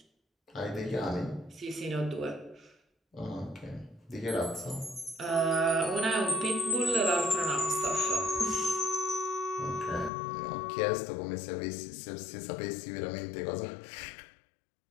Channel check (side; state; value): right; drops out; at 10.1 s